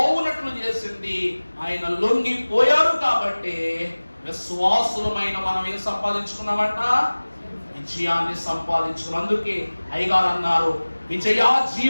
చేసింది. ఆయన లొంగిపోయారు కాబట్టి విశ్వాసులమైన మనం ఏం సంపాదించుకున్నామంట? విజయాన్ని సంపాదించుకున్నాం. అందుకే అయ్యగారు అన్నారు, విజయ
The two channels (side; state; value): both; inverted; correlation -1.00